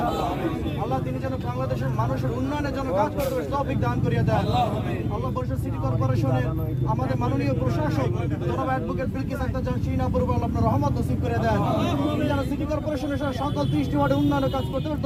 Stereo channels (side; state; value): both; identical; correlation 1.00